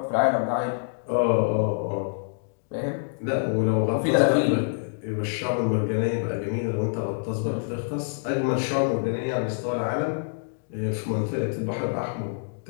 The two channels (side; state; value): right; silent; digital silence